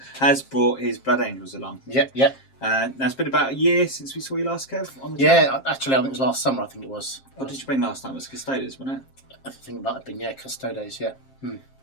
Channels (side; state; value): right; late; 7.5 ms